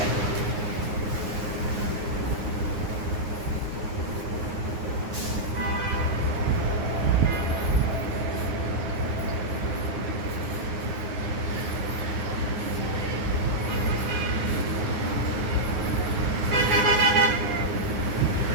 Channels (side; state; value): left; late; 9.6 ms